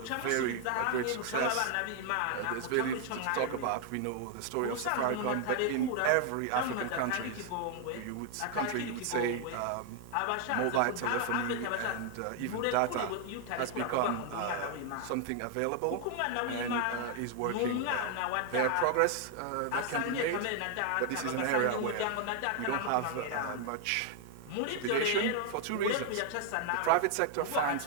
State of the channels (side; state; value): both; different; correlation 0.00